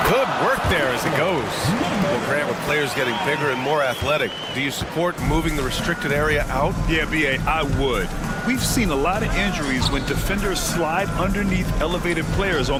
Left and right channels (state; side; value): identical; both; correlation 1.00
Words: Good work there as it goes. Well, Grant, with players getting bigger and more athletic, do you support moving the restricted area out? Yeah, B.A., I would. We've seen a lot of injuries when defenders slide underneath elevated players